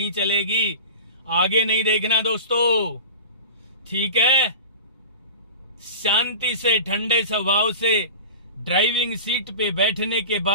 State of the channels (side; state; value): both; inverted; correlation -0.33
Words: चलेगी। आगे नहीं देखना दोस्तों, ठीक है। शांति से, ठंडे स्वभाव से ड्राइविंग सीट पे बैठने के